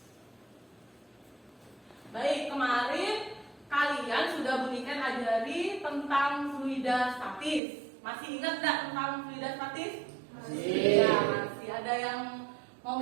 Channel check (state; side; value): drops out; left; at 7.6 s